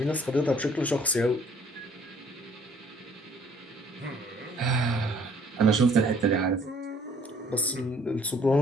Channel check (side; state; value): both; normal; correlation 0.60